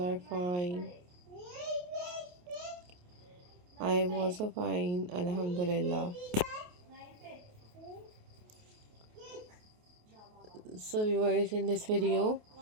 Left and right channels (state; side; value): late; left; 28 ms